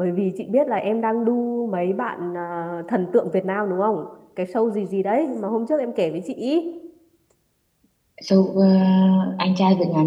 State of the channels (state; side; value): identical; both; correlation 1.00